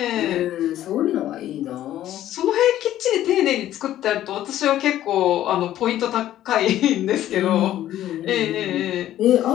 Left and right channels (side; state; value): right; quieter; 12.8 dB